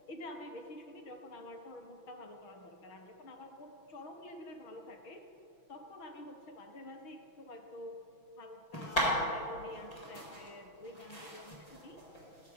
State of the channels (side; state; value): right; late; 6.1 ms